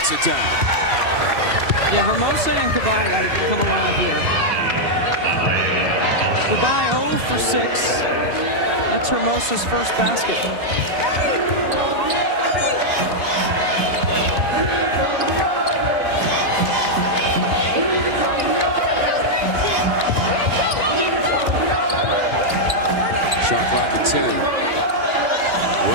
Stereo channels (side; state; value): left; late; 2.7 ms